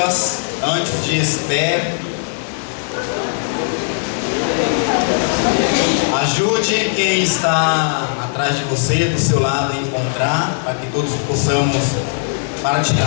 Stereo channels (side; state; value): right; silent; digital silence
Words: antes de Esther. Ajude quem está atrás de você, do seu lado, a encontrar, para que todos possamos